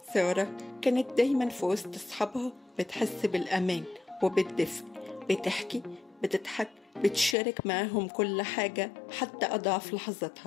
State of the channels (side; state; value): right; drops out; at 7.4 s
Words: سارة كانت دايما في وسط أصحابها بتحس بالأمان وبالدفء، بتحكي، بتضحك، بتشارك معاهم كل حاجة حتى أضعف